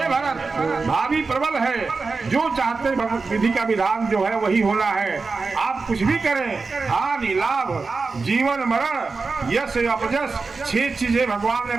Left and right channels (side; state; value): left; quieter; 4.2 dB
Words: भरत, भाभी प्रबल है, जो चाहते विधि का विधान जो है वही होना है। आप कुछ भी करें, हानि लाभ जीवन मरण यश अपयश 6 चीजें भगवान ने